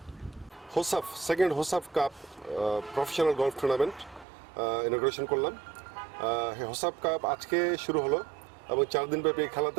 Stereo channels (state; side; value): drops out; left; at 4.2 s